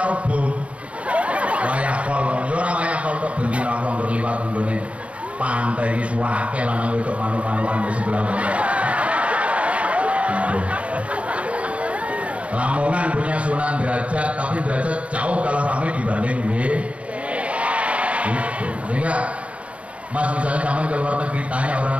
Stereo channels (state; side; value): late; left; 0.064 ms